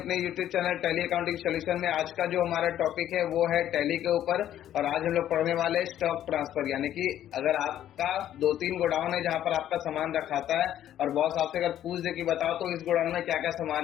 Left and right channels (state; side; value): quieter; right; 11.5 dB